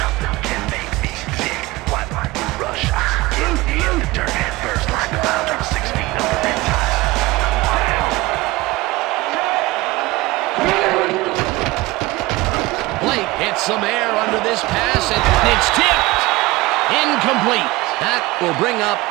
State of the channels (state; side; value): quieter; left; 20.3 dB